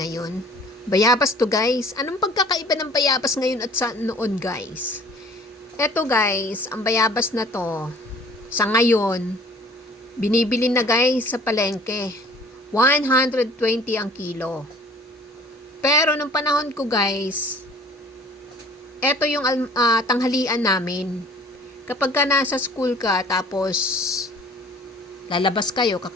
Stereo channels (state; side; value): normal; both; correlation 0.51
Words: Bayabas to guys. Anong pagkakaiba ng bayabas ngayon at sa noon guys? Eto guys, ang bayabas na to, sa ngayon, binibili na guys sa palengke. 120 ang kilo. Pero nung panahon ko guys, eto yung tanghalian namin. Kapag ka nasa school ka, tapos lalabas kayo,